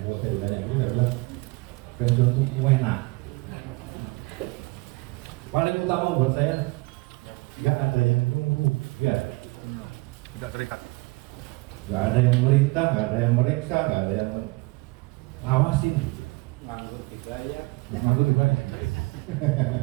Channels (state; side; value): quieter; left; 24.9 dB